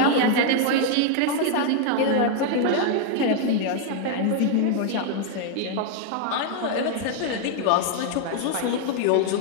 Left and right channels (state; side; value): different; both; correlation 0.00